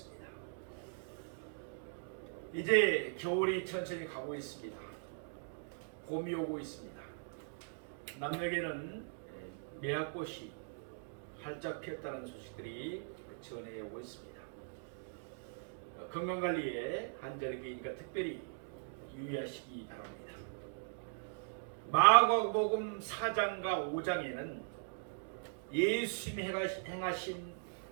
이제 겨울이 천천히 가고 있습니다. 봄이 오고 있습니다. 남녘에는 매화꽃이 활짝 피었다는 소식들이 전해 오고 있습니다. 건강관리에 한절기니까 특별히 유의하시기 바랍니다. 마가복음 4장과 5장에는 예수님이 행하신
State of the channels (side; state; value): left; silent; digital silence